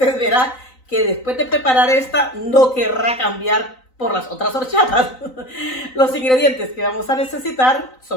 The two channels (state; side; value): late; right; 3.9 ms